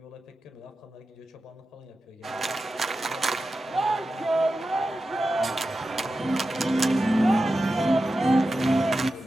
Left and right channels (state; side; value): normal; both; correlation 0.92